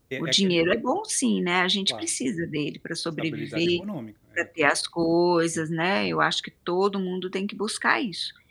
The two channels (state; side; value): identical; both; correlation 1.00